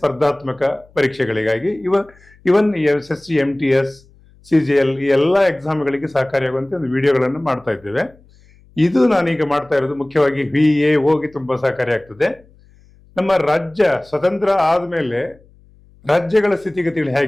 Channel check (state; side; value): noise; left; hum, 28 dB below the sound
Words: ಪರೀಕ್ಷೆಗಳಿಗಾಗಿ ಇವನ್ SSC, MTS, CGL ಈ ಎಲ್ಲ ಎಕ್ಸಾಮ್ಗಳಿಗೆ ಸಹಕಾರಿಯಾಗುವಂತೆ ಒಂದು ವಿಡಿಯೋಗಳನ್ನು ಮಾಡ್ತಾ ಇದ್ದೇವೆ. ಇದು ನಾನೀಗ ಮಾಡ್ತಾ ಇರೋದು ಮುಖ್ಯವಾಗಿ VAOಗೆ ತುಂಬಾ ಸಹಕಾರಿಯಾಗ್ತದೆ. ನಮ್ಮ ರಾಜ್ಯ ಸ್ವತಂತ್ರ ಆದ್ಮೇಲೆ ರಾಜ್ಯಗಳ ಸ್ಥಿತಿಗತಿಗಳು